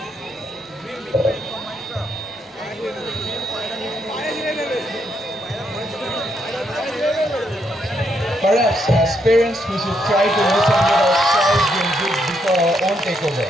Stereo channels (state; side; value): normal; both; correlation 0.77